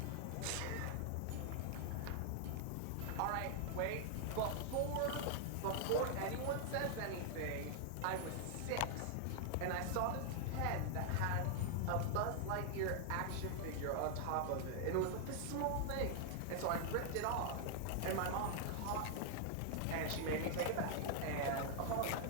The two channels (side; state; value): both; different; correlation 0.00